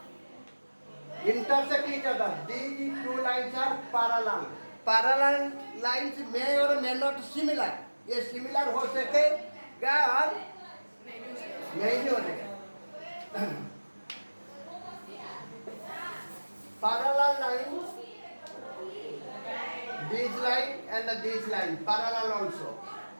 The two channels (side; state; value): both; inverted; correlation -1.00